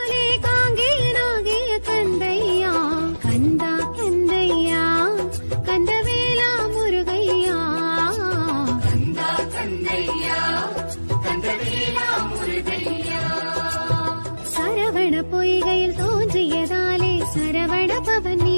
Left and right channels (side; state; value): both; inverted; correlation -1.00